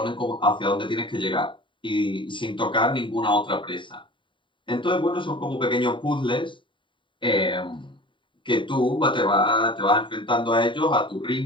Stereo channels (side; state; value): right; late; 0.24 ms